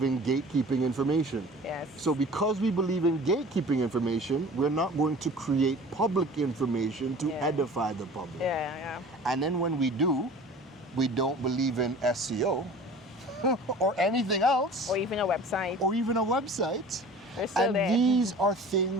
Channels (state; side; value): normal; both; correlation 0.43